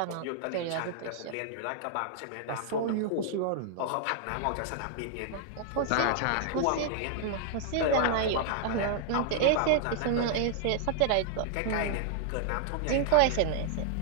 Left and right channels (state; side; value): different; both; correlation -0.01